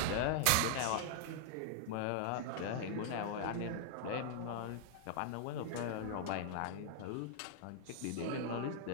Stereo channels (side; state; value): both; different; correlation -0.01